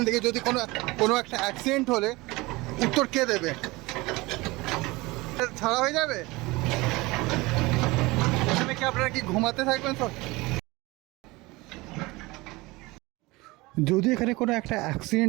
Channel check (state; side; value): quieter; left; 22.2 dB